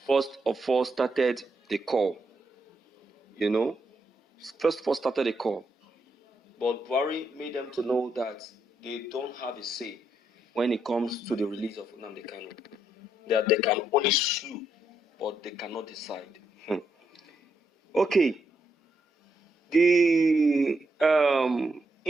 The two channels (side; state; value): both; normal; correlation 0.79